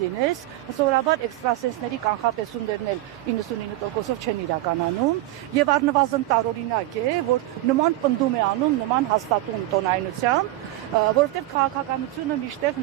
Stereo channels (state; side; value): quieter; left; 16.5 dB